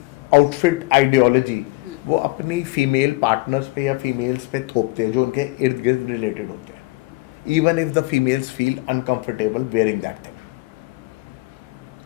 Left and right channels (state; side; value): quieter; right; 22.2 dB